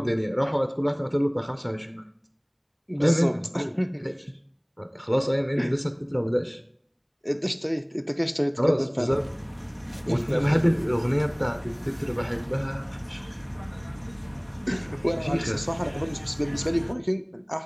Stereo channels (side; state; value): both; identical; correlation 1.00